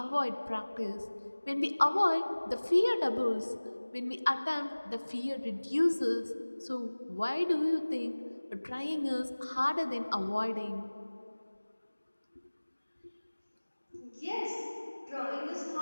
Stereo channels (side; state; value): both; inverted; correlation -1.00